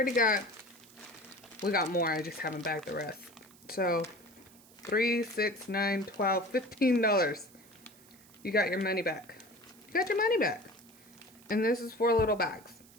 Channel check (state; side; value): noise; right; hiss, 25 dB below the sound